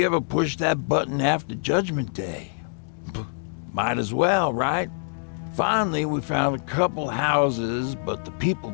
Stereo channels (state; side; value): silent; right; digital silence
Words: ever pushed that button after Judgment Day. Might as well, right? Finally, we found a couple houses, but the people